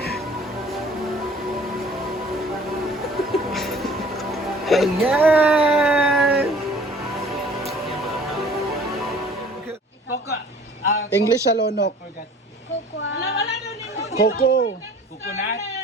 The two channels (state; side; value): normal; both; correlation 0.50